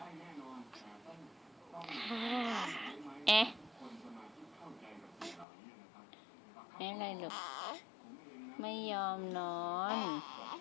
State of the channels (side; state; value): right; drops out; at 5.5 s